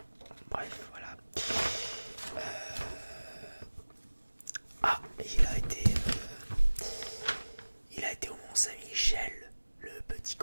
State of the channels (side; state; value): both; inverted; correlation -1.00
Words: Bref, voilà. Il a été au Mont-Saint-Michel, le petit